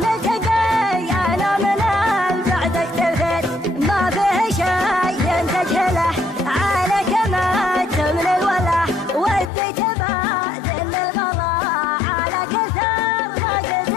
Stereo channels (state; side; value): drops out; right; at 9.5 s